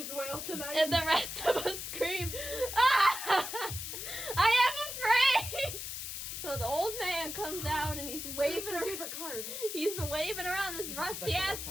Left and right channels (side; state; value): left; noise; hiss, 6 dB below the sound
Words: whale tonight. And the rest of us scream, "Ah! I am afraid!" So So the old man comes out and he's waving my around. favorite card. He's waving around this rusty ass